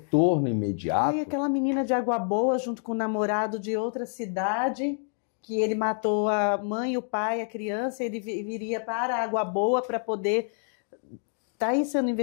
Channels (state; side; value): silent; right; 57 dB below the other